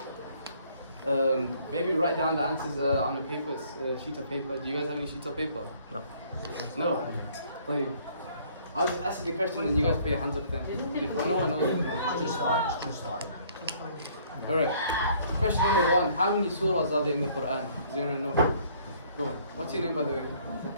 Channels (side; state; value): both; inverted; correlation -0.60